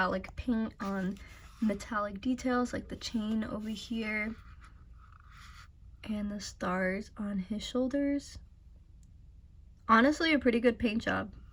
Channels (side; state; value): both; identical; correlation 1.00